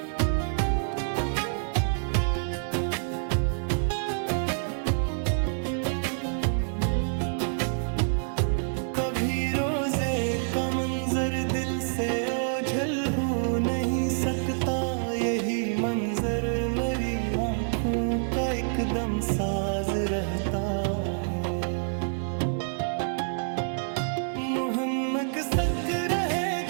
नहीं सकता, यही मंजर मेरी आंखों का एकदम साज रहता है। मोहम्मद सच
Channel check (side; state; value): left; silent; 60 dB below the other